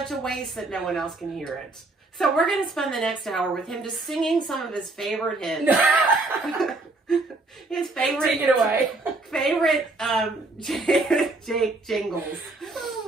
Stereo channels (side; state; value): left; quieter; 3.2 dB